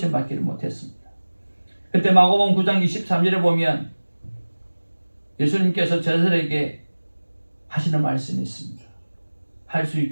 못했습니다. 그때 마가복음 9장 23절에 보면 예수님께서 제자들에게 하시는 말씀이 있습니다. 할 수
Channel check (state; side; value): inverted; both; correlation -1.00